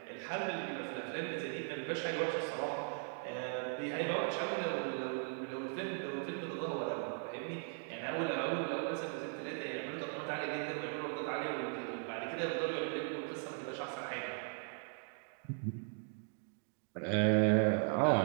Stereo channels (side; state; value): left; silent; 52 dB below the other